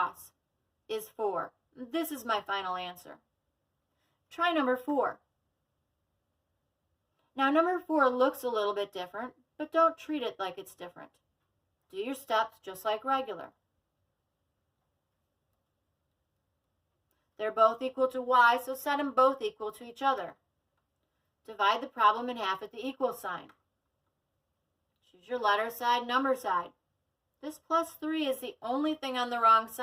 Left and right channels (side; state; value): both; identical; correlation 1.00